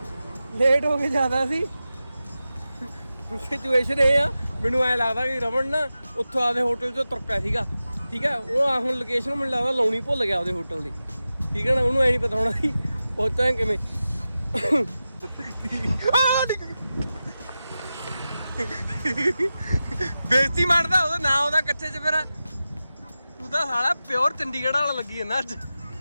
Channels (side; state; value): both; inverted; correlation -0.93